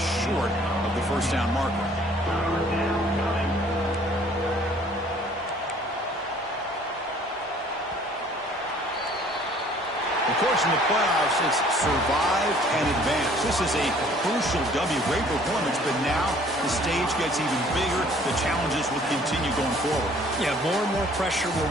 short of the first down marker. Of course, in the playoffs, it's survive and advance. This is a crucial W. Great performance, but now the stage gets even bigger. The challenges will continue going forward. Yeah, more and more pressure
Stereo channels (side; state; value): both; normal; correlation 0.56